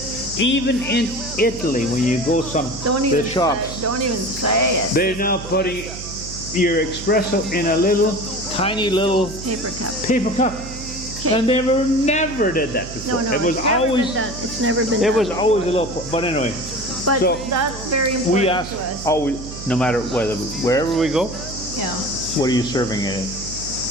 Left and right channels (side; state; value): right; noise; hum, 12 dB below the sound